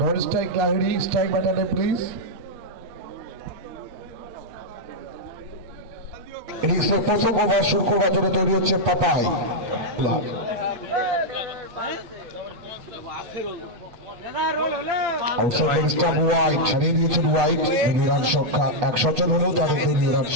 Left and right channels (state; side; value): late; left; 8.1 ms